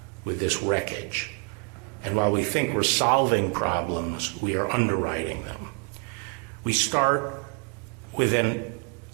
with this wreckage. And while we think we're solving problems, we are underwriting them. We start with an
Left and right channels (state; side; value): quieter; left; 39.5 dB